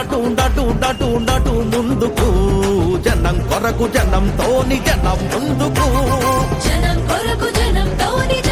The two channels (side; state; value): both; identical; correlation 1.00